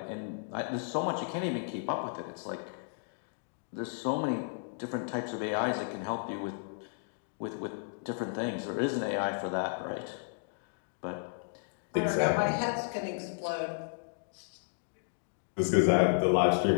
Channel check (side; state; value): right; silent; digital silence